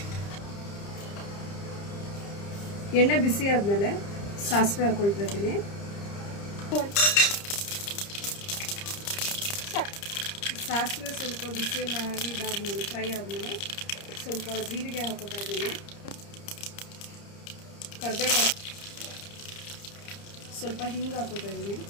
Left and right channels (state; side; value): late; right; 30 ms